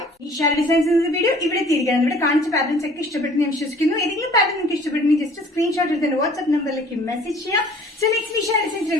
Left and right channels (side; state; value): both; normal; correlation 0.52